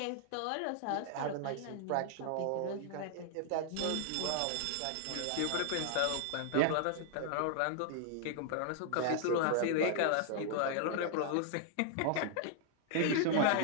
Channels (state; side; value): different; both; correlation -0.01